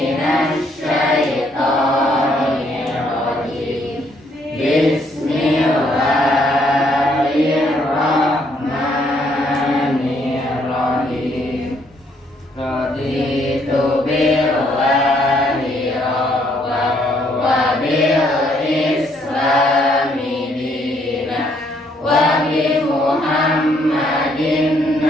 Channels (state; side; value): normal; both; correlation 0.69